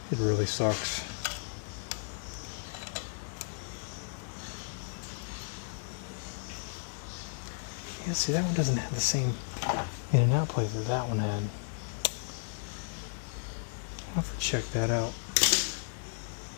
It really sucks. Yeah, see, that one doesn't have the same in and out plate that that one had. I'll have to check that out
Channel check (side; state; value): right; silent; digital silence